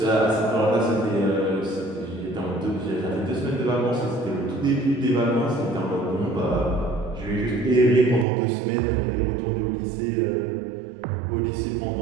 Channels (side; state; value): left; drops out; at 8.2 s